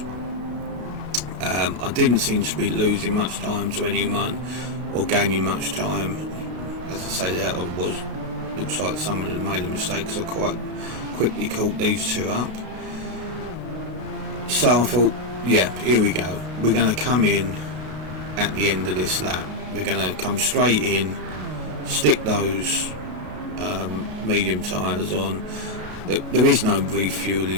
I didn't seem to be losing much time to anyone or gaining much time. As I say, that looks like someone had made a mistake, because I quite quickly caught these two up. So I thought, yeah, here we go. We're going to come in at the end of this lap. We're going to come straight in, stick those medium tyres on. There is no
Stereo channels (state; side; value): late; left; 32 ms